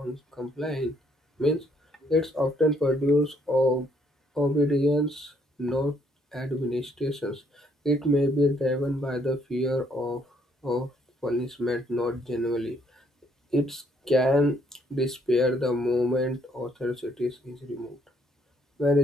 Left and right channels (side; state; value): both; normal; correlation 0.68